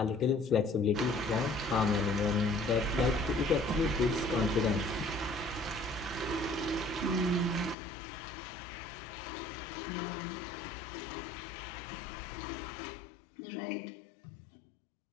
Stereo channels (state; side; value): drops out; right; at 7.8 s